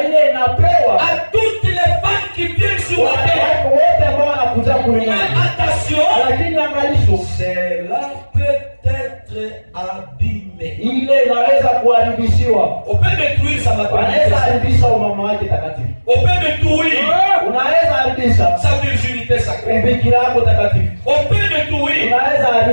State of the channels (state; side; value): inverted; both; correlation -1.00